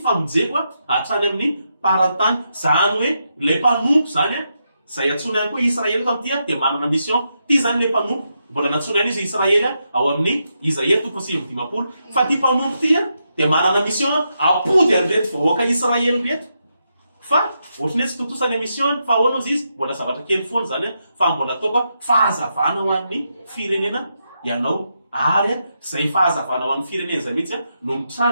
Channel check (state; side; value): inverted; both; correlation -0.83